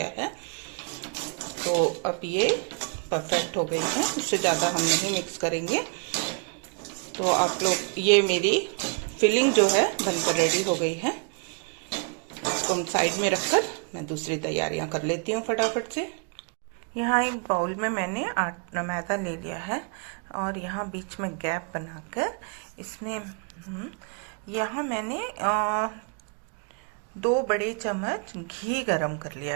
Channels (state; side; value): quieter; left; 37.6 dB